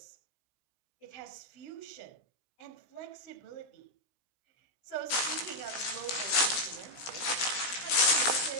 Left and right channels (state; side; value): late; right; 17 ms